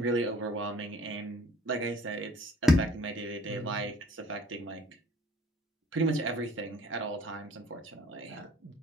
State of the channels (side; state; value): both; normal; correlation 0.54